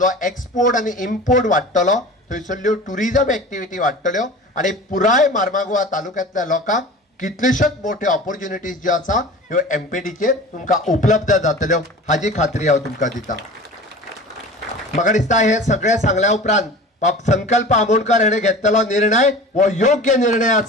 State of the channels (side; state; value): both; normal; correlation 0.38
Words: एक्सपोर्ट आनी इम्पोर्ट वाडटलो, थंयसरल्यो टुरिजम एक्टिविटी वाडटल्यो आनी पुराय मार्मागुआ तालुक्यांतल्या लोकांक कितल्योश्योच मोठ्यो ऑपॉर्च्युनिटीज ज्यो आसा ह्यो एमपीटीचेर तुमकां उपलब्ध जातल्यो हाजी खात्री हांव तुमकां दितां। म्हाका दिसता हे सगळें सांगल्या उपरांत संकल्प आमोणकर हाणें घेतलेलो निर्णय हो योग्य निर्णय